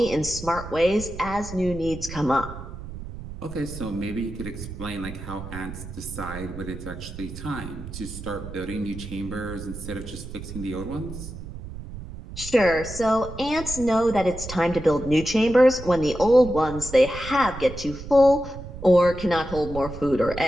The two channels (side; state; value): right; noise; rumble, 11 dB below the sound